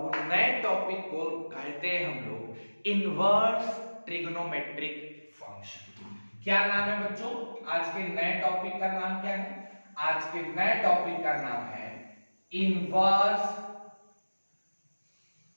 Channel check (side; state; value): both; inverted; correlation -1.00